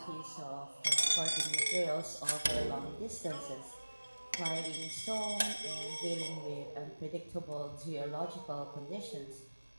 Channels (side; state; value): both; inverted; correlation -1.00